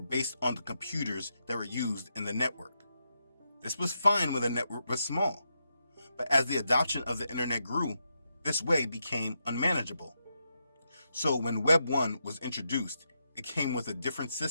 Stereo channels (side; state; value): both; inverted; correlation -0.84